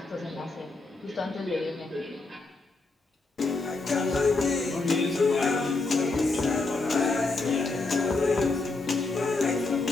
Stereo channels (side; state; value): right; quieter; 3.5 dB